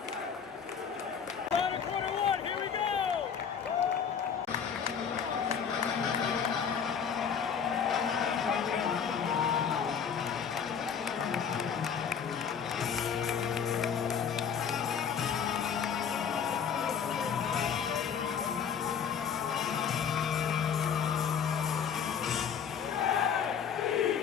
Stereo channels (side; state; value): right; quieter; 7.2 dB